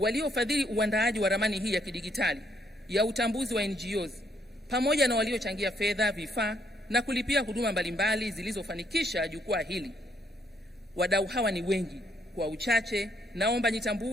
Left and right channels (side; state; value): both; normal; correlation 0.72